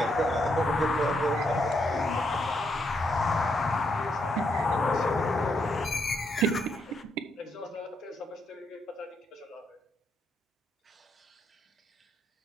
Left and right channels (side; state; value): both; normal; correlation 0.77